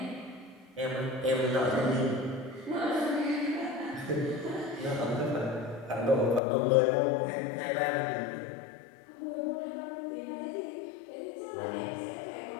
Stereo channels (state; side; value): drops out; right; at 6.4 s